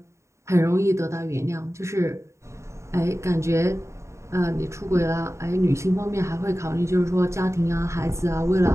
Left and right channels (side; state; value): left; late; 0.14 ms